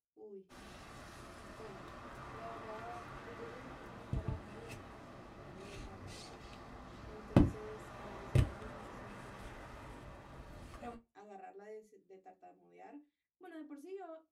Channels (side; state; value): both; identical; correlation 1.00